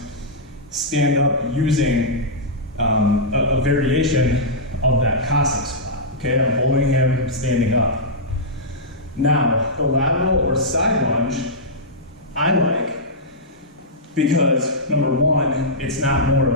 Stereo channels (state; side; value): normal; both; correlation -0.11